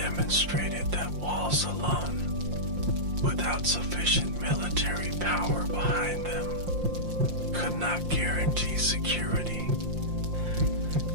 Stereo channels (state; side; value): late; left; 5.7 ms